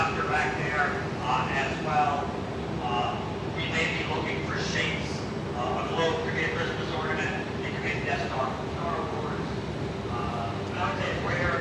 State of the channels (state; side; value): identical; both; correlation 1.00